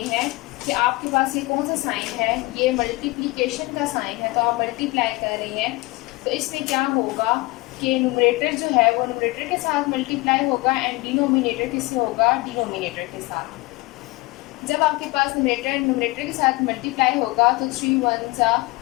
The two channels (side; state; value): right; quieter; 22.7 dB